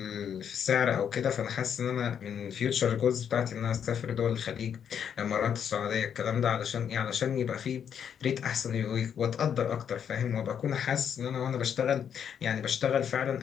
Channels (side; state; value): right; quieter; 8.2 dB